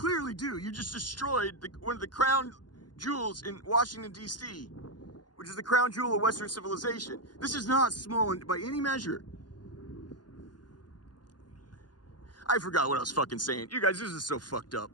do, you just destroyed one of the crown jewels in Washington, D.C., which is the crown jewel of Western civilization. This is not small by any measure. I forgot what I was fucking saying. You guys, this is so fucked up.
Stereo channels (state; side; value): late; right; 0.70 ms